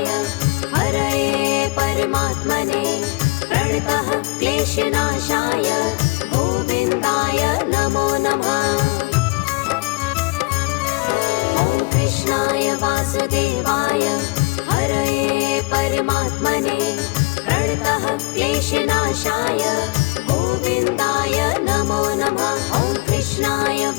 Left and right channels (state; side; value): quieter; right; 25.2 dB